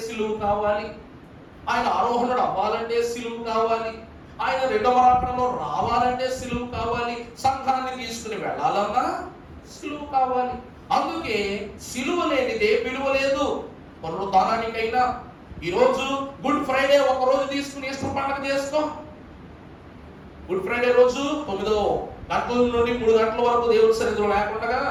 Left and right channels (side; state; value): both; identical; correlation 1.00